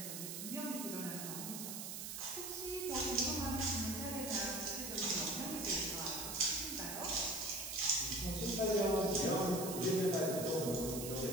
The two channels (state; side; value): noise; right; hiss, 6 dB below the sound